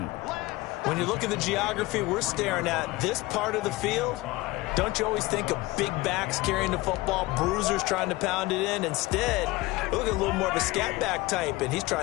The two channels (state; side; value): quieter; right; 20.4 dB